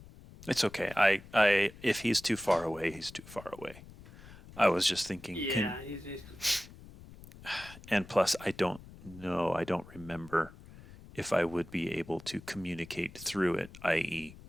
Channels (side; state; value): left; noise; rumble, 18 dB below the sound